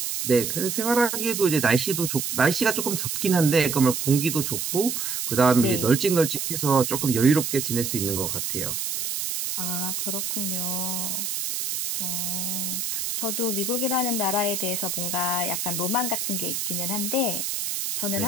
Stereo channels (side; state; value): right; noise; hiss, 2 dB below the sound